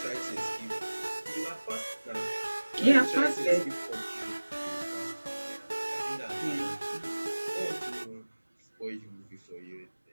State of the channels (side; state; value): both; inverted; correlation -1.00